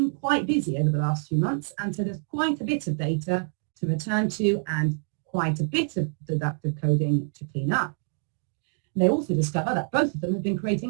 quite busy over the last few months, and so there's quite a bit of data to return to and quite a bit of deductive coding to clean up. And they also discover that both of them have been creating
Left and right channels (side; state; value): left; silent; 61 dB below the other